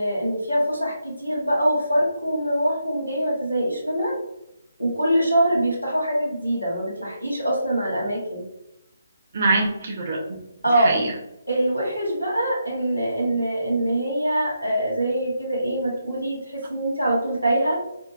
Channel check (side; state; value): both; inverted; correlation -0.82